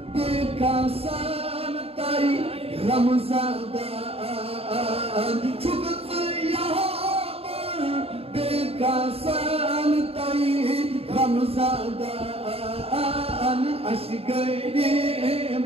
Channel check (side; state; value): left; late; 0.28 ms